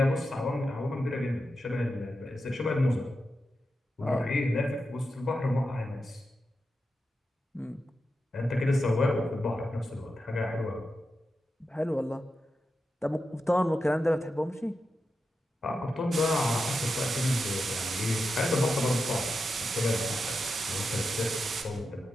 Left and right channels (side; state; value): both; normal; correlation 0.89